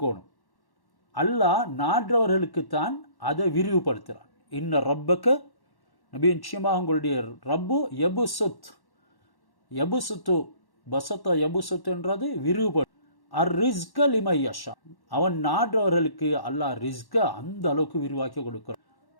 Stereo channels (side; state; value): right; late; 1.1 ms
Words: அல்லாஹ் நாடுறவர்களுக்குத்தான் அதை விரிவுபடுத்துகிறான். இன்ன ரப்பக நபி, நிச்சயமாக உங்களுடைய ரப்பு யபுசுத், யபுசுத்து பசத்த யபுசுத்துன்றது விரிவுபடு. அர் ரிஸ்க லிமை யஷா, அவன் நாடுறவர்களுக்கு அல்லாஹ் ரிஸ்க அந்த அளவுக்கு விரிவாக்கி கொடுக்கிறான்.